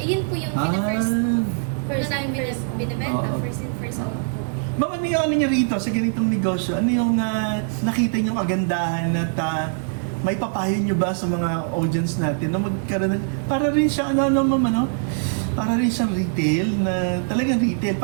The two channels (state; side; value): silent; left; 64 dB below the other